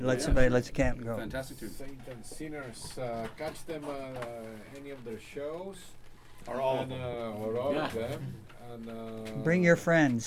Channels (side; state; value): both; identical; correlation 1.00